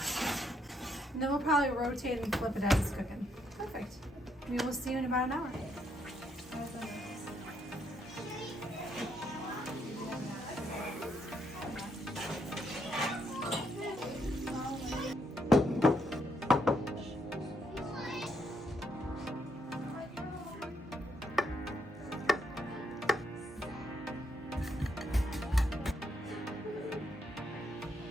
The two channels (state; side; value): normal; both; correlation 0.75